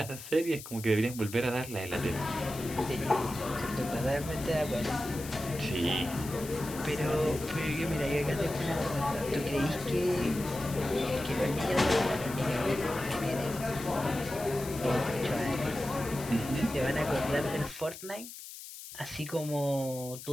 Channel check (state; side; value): noise; left; hiss, 13 dB below the sound